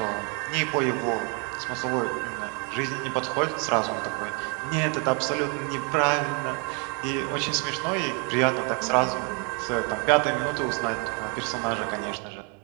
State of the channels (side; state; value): left; quieter; 36.4 dB